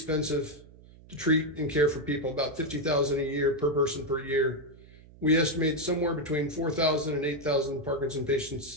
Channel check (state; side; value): noise; right; hum, 22 dB below the sound